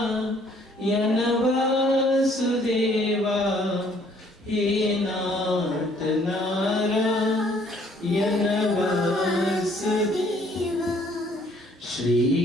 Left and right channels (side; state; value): both; normal; correlation 0.62